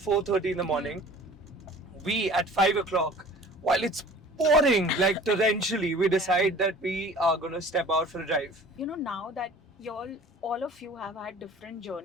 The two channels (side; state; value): both; normal; correlation 0.46